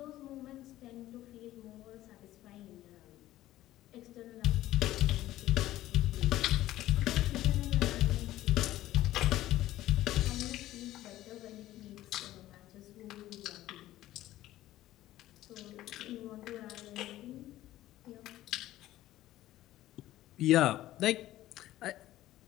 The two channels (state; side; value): quieter; right; 14.9 dB